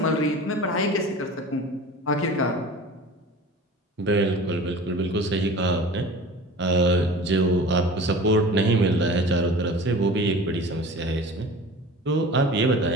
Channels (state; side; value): normal; both; correlation 0.39